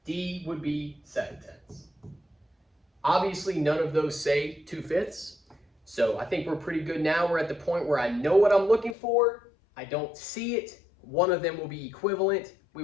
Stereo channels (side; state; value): right; drops out; at 9.0 s